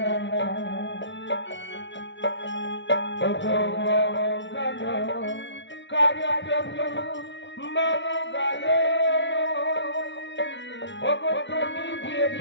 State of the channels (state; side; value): late; right; 0.53 ms